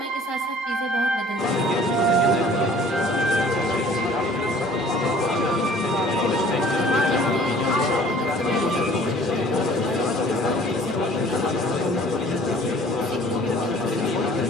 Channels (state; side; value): normal; both; correlation 0.51